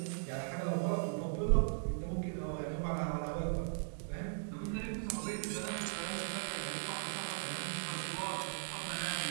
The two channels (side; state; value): left; silent; digital silence